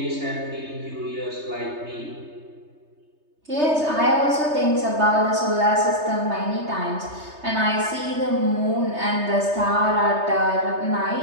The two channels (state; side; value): late; left; 3.3 ms